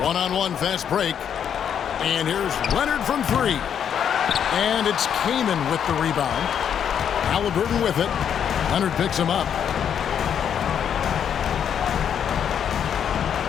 One-on-one fast break. And here's Leonard from 3. And it's Kaman with the rebound. Halliburton with it. Leonard picks him up.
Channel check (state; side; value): quieter; right; 8.5 dB